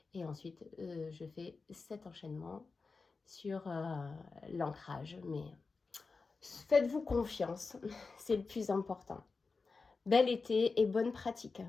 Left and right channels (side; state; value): right; quieter; 4.3 dB